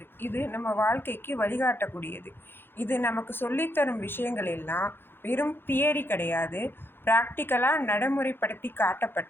இது நம்ம வாழ்க்கைக்கு வழிகாட்டக்கூடியது. இது நமக்கு சொல்லித்தரும் விஷயங்கள் எல்லாம் வெறும் தியரி கிடையாது, ப்ராக்டிக்கலாக நடைமுறைப்படுத்தி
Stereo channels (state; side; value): late; right; 0.10 ms